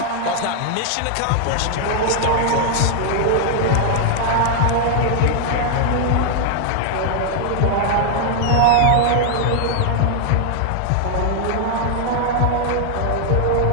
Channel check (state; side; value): different; both; correlation 0.00